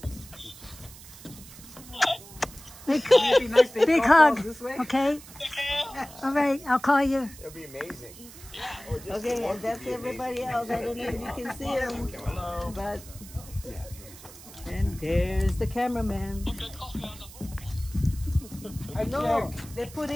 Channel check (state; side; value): noise; right; hiss, 18 dB below the sound